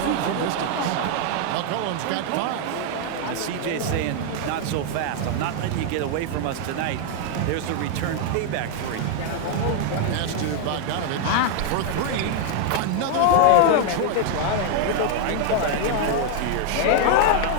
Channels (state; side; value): different; both; correlation 0.00